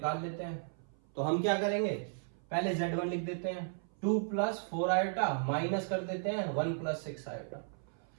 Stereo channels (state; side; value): silent; left; 54 dB below the other